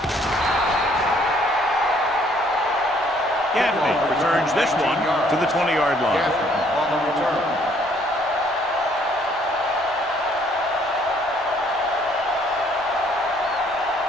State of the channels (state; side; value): normal; both; correlation 0.63